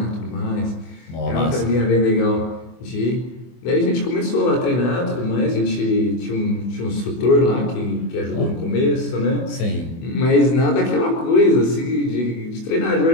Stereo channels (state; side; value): late; right; 24 ms